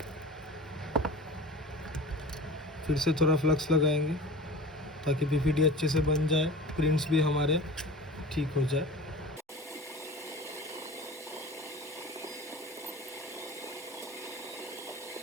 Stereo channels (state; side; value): normal; both; correlation 0.37